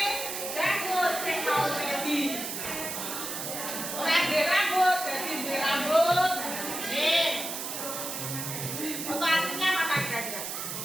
janggut sing mau ready. Ora ndek rambut, dadi ndek rambut. Nih. Foto aslinya mana kira-kira?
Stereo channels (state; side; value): noise; right; hiss, 5 dB below the sound